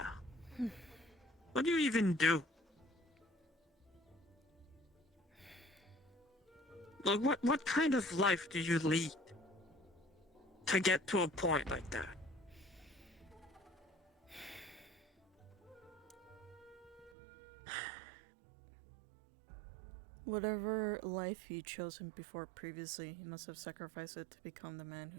What do you even do? Like, what kind of life do you lead to get to a point like that? Whatever life he'd chosen before previously, he must have sacrificed it to become the man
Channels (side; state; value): left; drops out; at 17.2 s